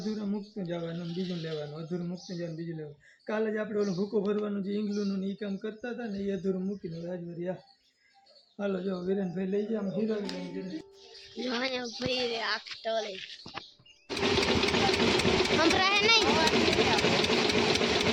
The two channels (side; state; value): both; identical; correlation 1.00